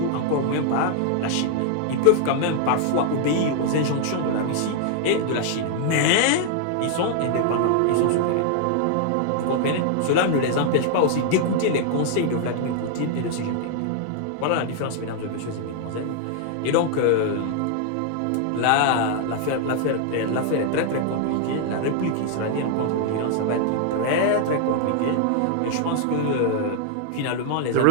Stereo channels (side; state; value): both; different; correlation 0.00